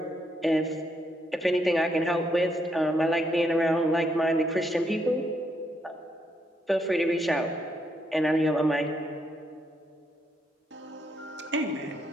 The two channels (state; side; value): normal; both; correlation 0.76